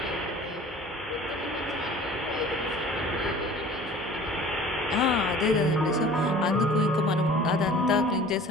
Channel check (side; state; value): both; normal; correlation 0.46